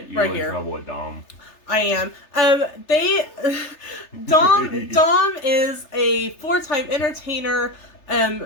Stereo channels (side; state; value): right; late; 3.3 ms